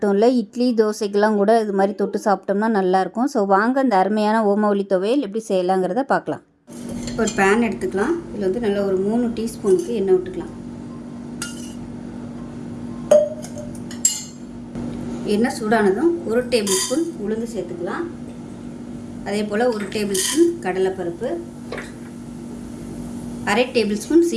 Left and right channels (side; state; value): both; identical; correlation 1.00